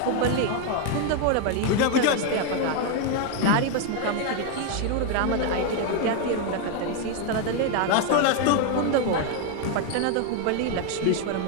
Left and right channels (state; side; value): different; both; correlation 0.01